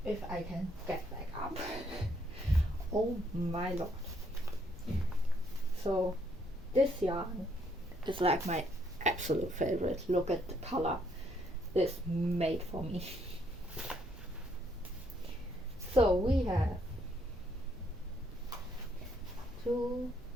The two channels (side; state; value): both; normal; correlation 0.70